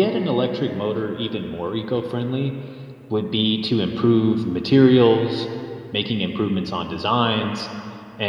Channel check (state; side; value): identical; both; correlation 1.00